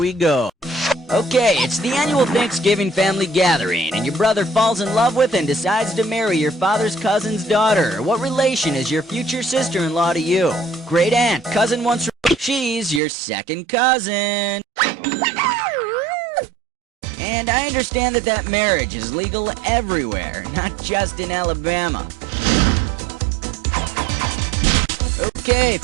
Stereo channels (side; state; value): left; drops out; at 13.0 s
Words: go. Okay, it's the annual Thanksgiving family gathering, and your brother falls in love with and decides to marry your father's cousin's daughter. What relation is your future sister-in-law to you? Great aunt, cousin once removed. She's your second cousin. And I understand that marriage is legal everywhere, not just in Alabama. Okay,